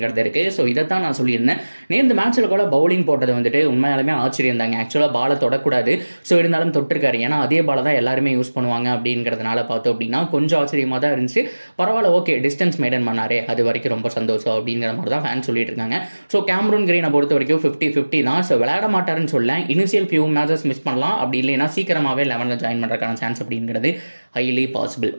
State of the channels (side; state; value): both; inverted; correlation -1.00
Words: இருக்குது. ஸோ இதைத்தான் நான் சொல்லியிருந்தேன். நேற்று மேட்ச்சில் கூட பவுலிங் போட்டது வந்துட்டு உண்மையாலுமே ஆச்சரியம் தாங்க. ஆக்சுவலாக பாலை தொடக்கூடாது, ஸோ இருந்தாலும் தொட்டிருக்காரு, ஏன்னா அதே பாலை தான் எல்லாருமே யூஸ் பண்ணுவாங்க அப்படிங்கிறதுனால பார்த்தோம் அப்படின்னா கொஞ்சம் ஆச்சரியமாக தான் இருந்துச்சு. பரவாயில்ல, ஓகே, டிஸ்டன்ஸ் மெயின்டைன் பண்ணாரே, அது வரைக்கும் ரொம்ப சந்தோஷம் அப்படிங்கிற மாதிரி தான் ஃபேன் சொல்லிட்டு இருக்காங்க. ஸோ கேமரூன் கிரீனை பொறுத்த வரைக்கும் 50-50 தான். ஸோ விளையாட மாட்டாருன்னு சொல்ல, இனிஷியல் ஃபியூ மேட்சஸ் மிஸ் பண்ணலாம், அப்படி இல்லைன்னா சீக்கிரமாகவே 11ல் ஜாயின் பண்ணுறதுக்கான சான்ஸ் அப்படிங்கிறது ஹைலி பாசிபிள்.